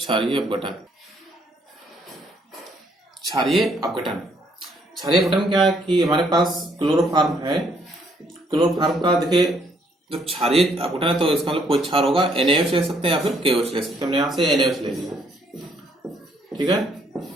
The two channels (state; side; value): normal; both; correlation 0.68